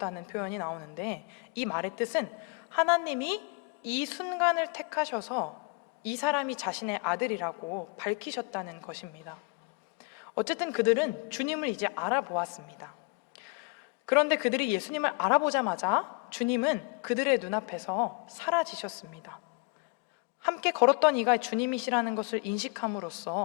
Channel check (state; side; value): quieter; right; 31.6 dB